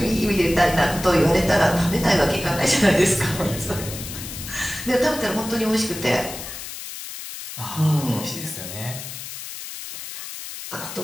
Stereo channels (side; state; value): left; noise; hiss, 10 dB below the sound